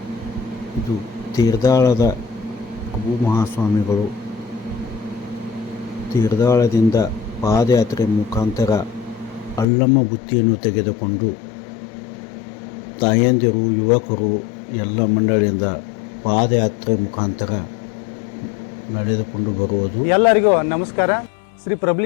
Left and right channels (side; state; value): right; drops out; at 9.7 s